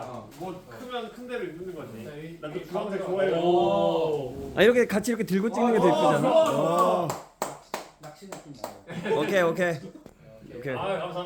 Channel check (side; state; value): both; identical; correlation 1.00